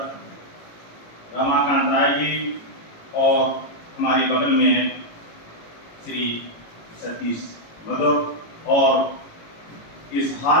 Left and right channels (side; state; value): right; late; 18 ms